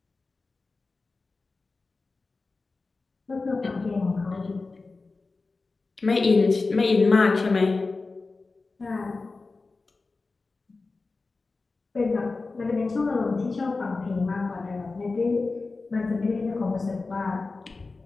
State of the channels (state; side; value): quieter; right; 3.8 dB